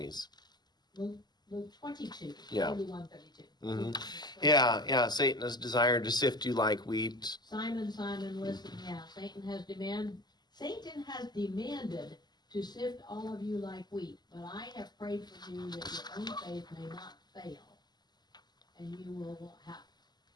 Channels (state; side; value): late; right; 0.21 ms